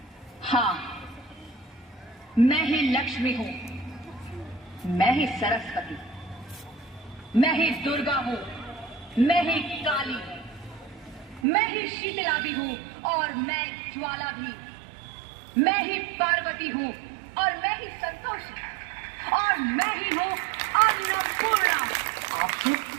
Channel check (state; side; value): drops out; left; at 11.5 s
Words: हाँ, मैं ही लक्ष्मी हूँ, मैं ही सरस्वती, मैं ही दुर्गा हूँ, मैं ही काली हूँ, मैं ही शीतला भी हूँ और मैं ज्वाला भी, मैं ही पार्वती हूँ और मैं ही संतोषी और मैं ही हूँ अन्नपूर्णा।